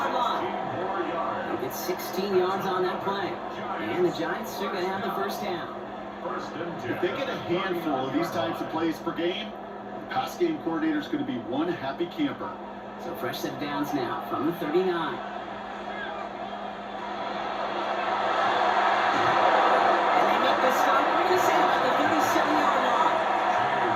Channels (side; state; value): both; identical; correlation 1.00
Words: line. He gets 16 yards on that play. And the Giants are going to have the first down. If they get a handful of these types of plays per game, the pass game coordinator is going to be one happy camper. So fresh set of downs now from the 39. And they make the stop right at the 37-yard line.